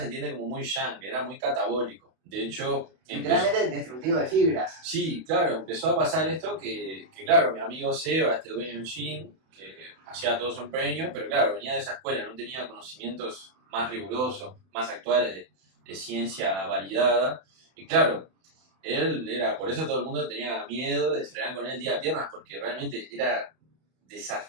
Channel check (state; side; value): late; left; 31 ms